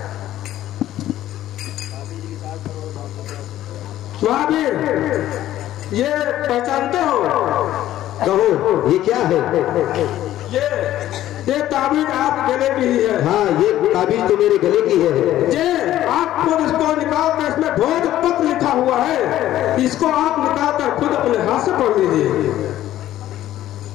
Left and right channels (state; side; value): quieter; right; 13.4 dB